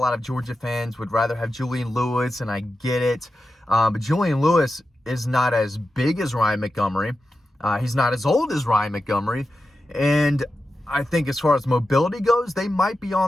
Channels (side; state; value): both; normal; correlation 0.91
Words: of Georgia fans would rather have Julian Lewis, and I get it. But Julian Lewis is not as big as Ryan Montgomery. He's not as old as Ryan Montgomery. And I think as far as mobility goes, they might be